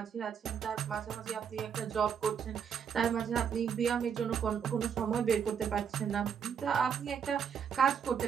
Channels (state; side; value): quieter; left; 7.4 dB